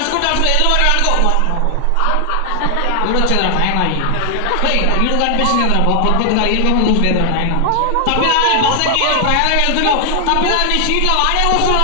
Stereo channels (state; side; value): different; both; correlation 0.00